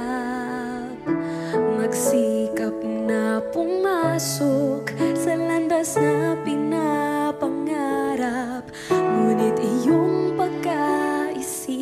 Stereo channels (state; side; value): identical; both; correlation 1.00